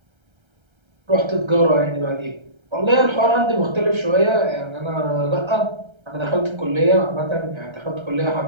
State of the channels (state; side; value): late; left; 1.3 ms